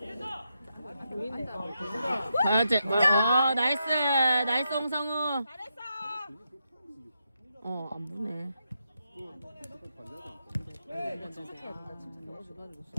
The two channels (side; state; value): both; inverted; correlation -0.83